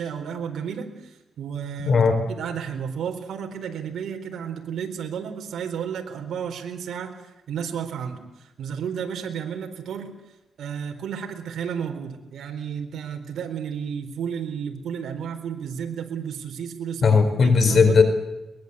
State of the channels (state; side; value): normal; both; correlation 0.77